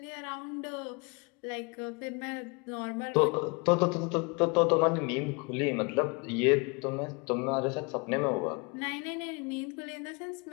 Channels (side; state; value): right; quieter; 30.3 dB